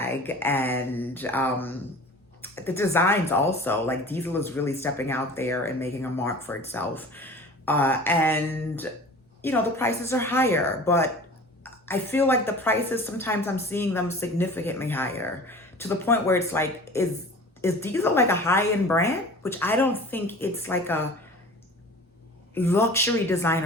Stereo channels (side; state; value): both; normal; correlation 0.41